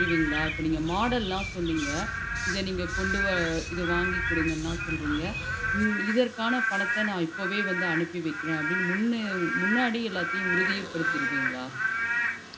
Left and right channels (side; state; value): both; identical; correlation 1.00